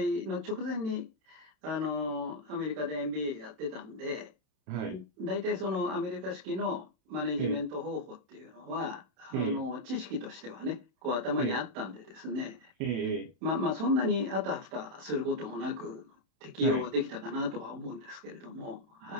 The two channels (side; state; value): left; late; 31 ms